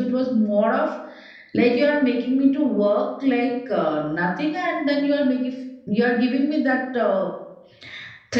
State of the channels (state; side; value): identical; both; correlation 1.00